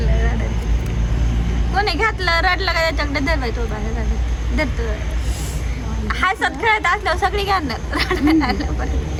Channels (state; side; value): identical; both; correlation 1.00